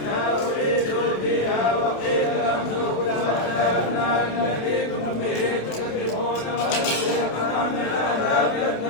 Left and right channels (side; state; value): right; late; 27 ms